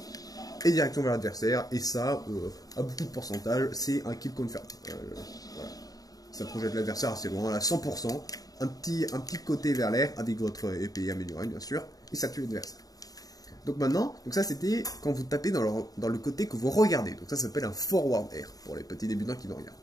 Et direction vers l'adversaire, et ça, à beaucoup de pourcentage, c'est un kill confirm. Voilà. Ça projette l'adversaire assez loin, à 100%, un petit côté vers l'air, avec votre épée améliorée bien sûr, et ça tue l'adversaire. Donc maintenant, ça c'était quand vous tapez dans le côté que vous regardez, donc ça s'appelle un forward air, pour les petits débutants qui me regardent.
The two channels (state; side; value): late; right; 0.18 ms